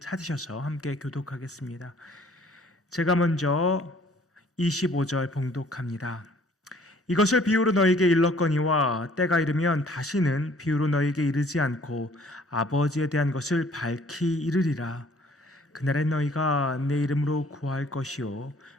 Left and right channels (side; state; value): both; normal; correlation 0.57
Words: 함께 교독하겠습니다. 제가 먼저 25절 봉독합니다. 이것을 비유로 너에게 일렀거니와 때가 이르면 다시는 비유로 너에게 이르지 않고 아버지에 대한 것을 밝히 이르리라. 그날에 너희가 내 이름으로 구할 것이요